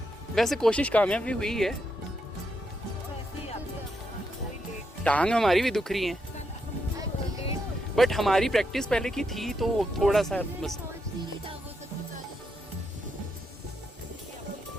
वैसे कोशिश कामयाब भी हुई है। टांग हमारी भी दुख रही है, बट हमारी प्रैक्टिस पहले की थी तो थोड़ा सा बस।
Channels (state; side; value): normal; both; correlation 0.81